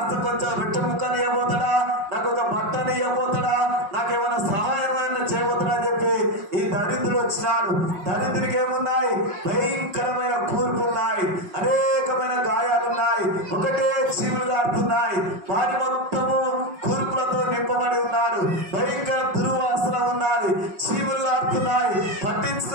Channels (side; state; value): left; late; 5.5 ms